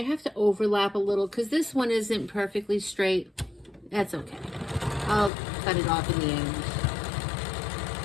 have to overlap a little because this one isn't perfectly straight. That's okay. I'll cut it off in the end.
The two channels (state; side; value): drops out; right; at 5.3 s